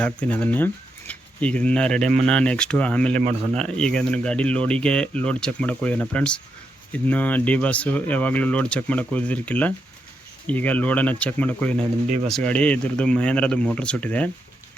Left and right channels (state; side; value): normal; both; correlation 0.83